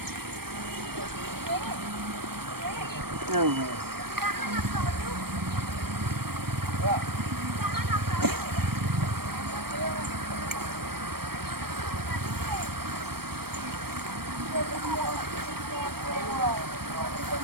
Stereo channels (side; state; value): left; late; 0.95 ms